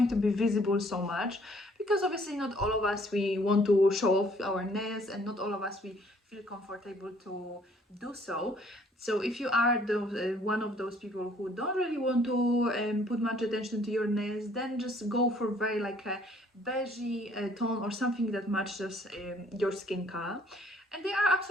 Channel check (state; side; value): normal; both; correlation 0.61